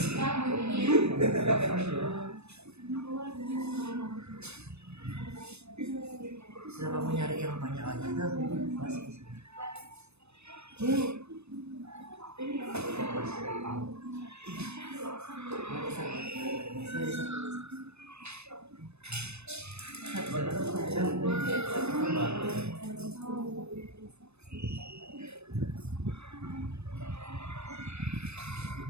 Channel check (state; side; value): late; left; 0.80 ms